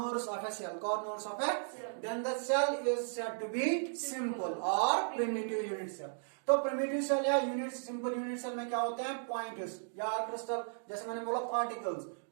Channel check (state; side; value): silent; left; digital silence